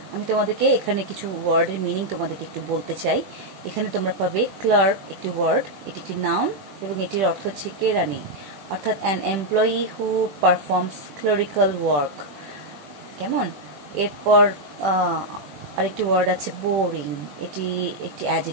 আমি তোমাদেরকে এখানে কিছু ওয়ার্ডের মিনিং তোমাদেরকে একটু বলতে চাই। এখানে তোমরা পাবে ক্লার্ক, একটি ওয়ার্ড, এটি একটি নাউন এবং এটির অর্থ হচ্ছে কেরানি, অর্থাৎ an employee who performs clerical work. কেমন? এরপর আরেকটি ওয়ার্ড আছে বোরিং, এটি একটি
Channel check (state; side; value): late; left; 20 ms